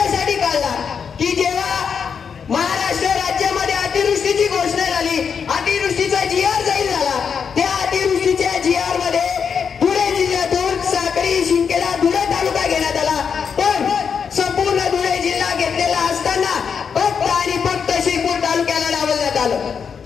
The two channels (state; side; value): quieter; right; 6.6 dB